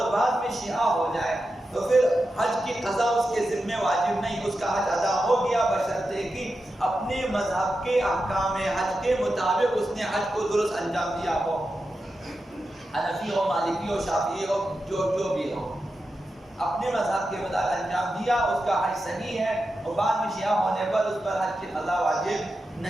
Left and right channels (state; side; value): normal; both; correlation 0.90